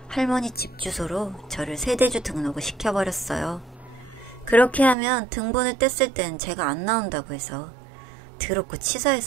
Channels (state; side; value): drops out; left; at 5.0 s